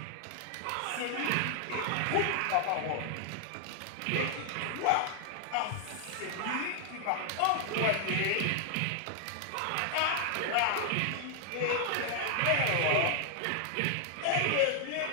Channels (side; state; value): both; different; correlation 0.00